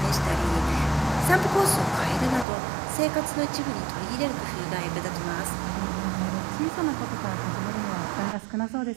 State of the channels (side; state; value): left; drops out; at 2.5 s